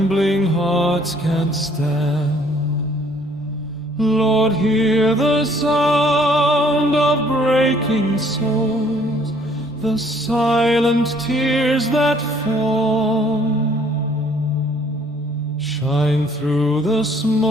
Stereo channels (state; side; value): normal; both; correlation 0.61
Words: hearts can't stand. Lord, hear the sound of breaking souls, the silent tears that fall. Shine through the